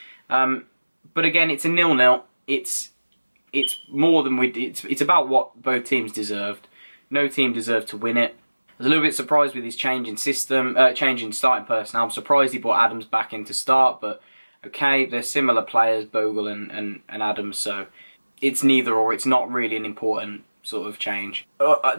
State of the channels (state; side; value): inverted; both; correlation -1.00